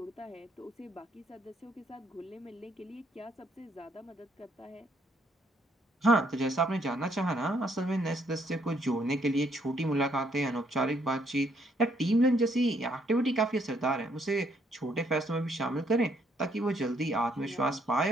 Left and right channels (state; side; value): normal; both; correlation 0.70